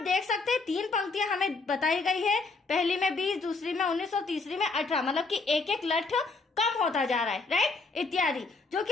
देख सकते हैं 3 पंक्तियां हमें बताई गई है, पहली में 20, दूसरी में 19 और तीसरी में 18। मतलब कि एक एक लट्ठ कम होता जा रहा है, राइट, इत्यादि, जो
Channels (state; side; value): quieter; right; 3.9 dB